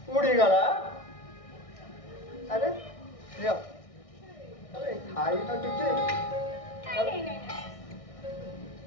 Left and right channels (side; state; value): right; late; 1.6 ms